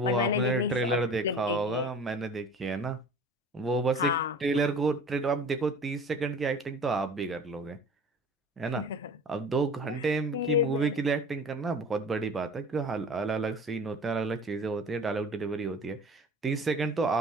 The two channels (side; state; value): both; normal; correlation 0.42